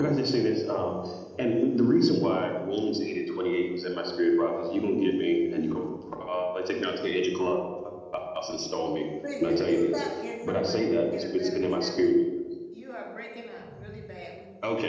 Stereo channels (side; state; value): both; identical; correlation 1.00